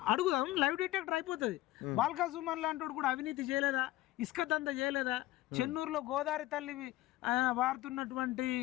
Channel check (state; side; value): quieter; right; 16.8 dB